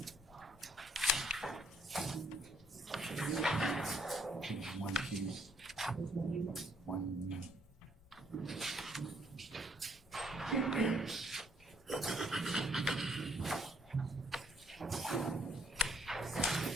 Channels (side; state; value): both; normal; correlation 0.67